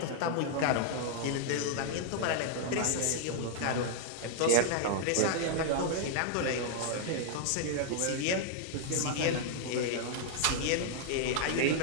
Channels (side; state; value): both; different; correlation -0.01